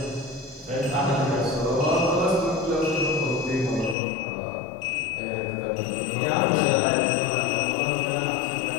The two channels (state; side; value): drops out; right; at 4.0 s